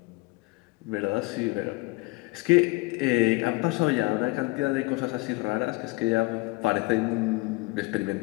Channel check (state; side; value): quieter; right; 24.8 dB